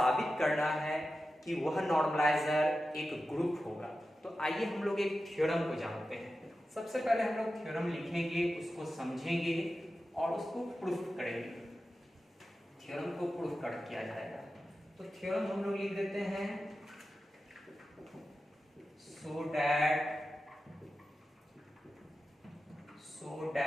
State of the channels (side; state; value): both; normal; correlation 0.92